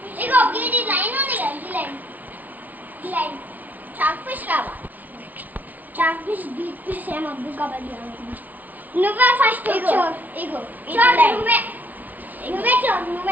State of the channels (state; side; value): late; left; 0.078 ms